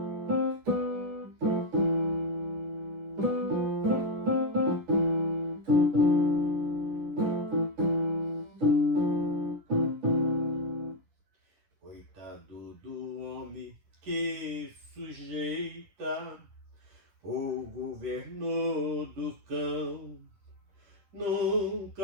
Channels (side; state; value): left; late; 10 ms